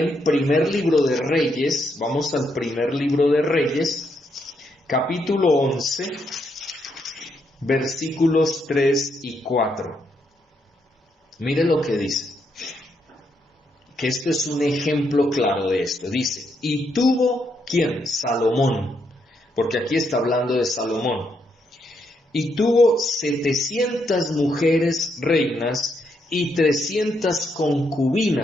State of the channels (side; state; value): both; normal; correlation 0.78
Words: primer libro de Reyes, vamos al primer libro de Reyes, capítulo 11, versículos 3 y 4. Mire lo que dice, que esto es un ejemplo claro de esto. Dice, y tuvo, ¿quién? Salomón, porque aquí está hablando de Salomón. Y tuvo 700 mujeres reinas y 300